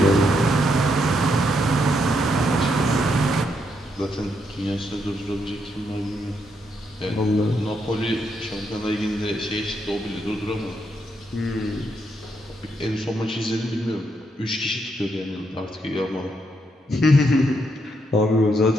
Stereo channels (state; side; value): normal; both; correlation 0.78